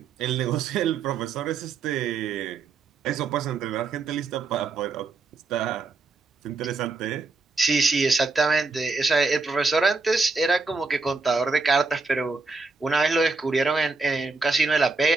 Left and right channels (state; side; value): quieter; left; 4.0 dB